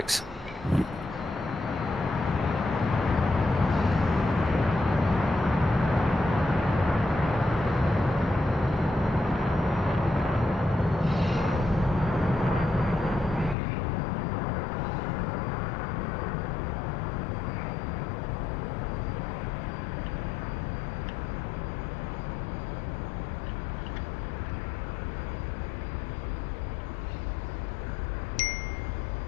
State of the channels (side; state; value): right; drops out; at 13.6 s